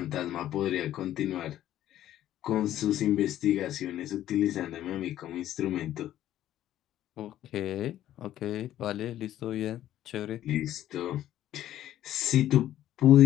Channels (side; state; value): right; quieter; 12.6 dB